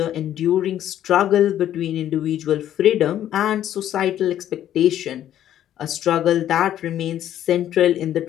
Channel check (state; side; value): quieter; right; 11.5 dB